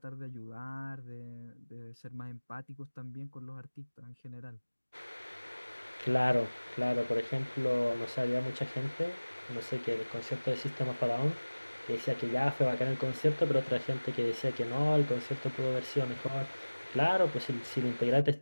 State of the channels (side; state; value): both; inverted; correlation -1.00